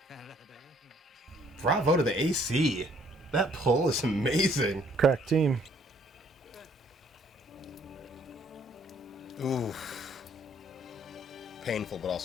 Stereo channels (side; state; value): both; normal; correlation 0.62